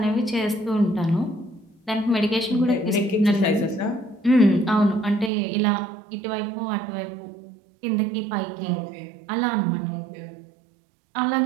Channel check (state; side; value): drops out; left; at 5.3 s